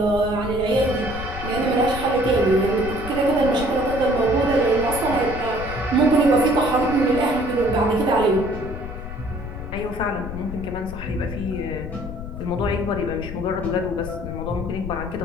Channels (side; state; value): left; noise; rumble, 9 dB below the sound